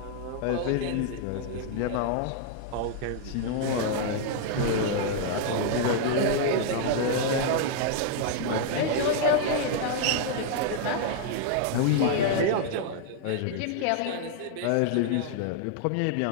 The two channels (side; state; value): both; different; correlation 0.00